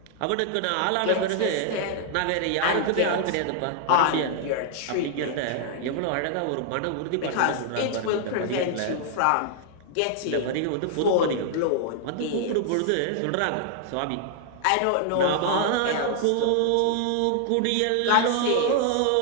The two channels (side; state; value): both; different; correlation -0.01